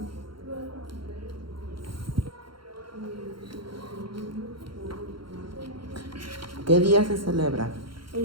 ¿Qué día se celebra?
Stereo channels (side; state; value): left; late; 0.73 ms